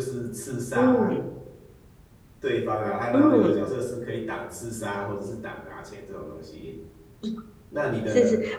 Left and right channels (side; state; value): both; identical; correlation 1.00